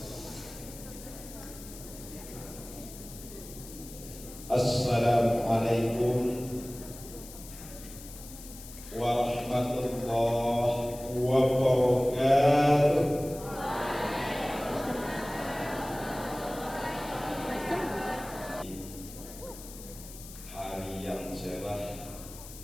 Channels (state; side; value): noise; left; hiss, 15 dB below the sound